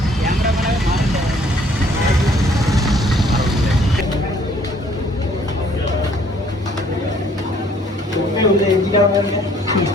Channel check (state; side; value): normal; both; correlation 0.61